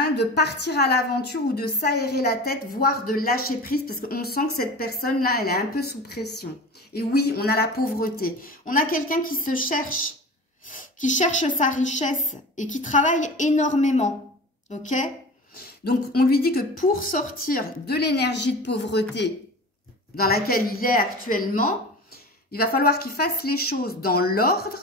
de partir à l'aventure ou de s'aérer la tête, voire de lâcher prise, parce qu'on sent que cette personne-là, elle est un peu sous pression. Et oui, on a la pauvreté. On a quelqu'un qui se cherche, qui cherche sa richesse et qui travaille énormément, ok? Donc, on lui dit que pour sortir de l'énergie de pauvreté dans laquelle il est actuellement, il va falloir qu'il fasse les choses dans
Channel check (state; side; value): normal; both; correlation 0.34